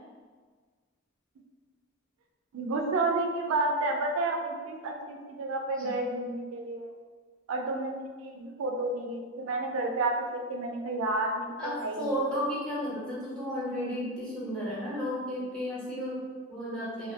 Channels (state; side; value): normal; both; correlation 0.05